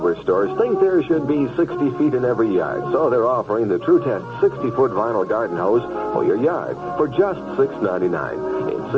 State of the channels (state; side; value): identical; both; correlation 1.00